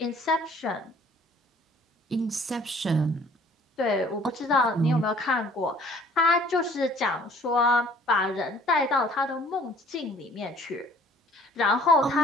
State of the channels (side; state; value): both; normal; correlation 0.55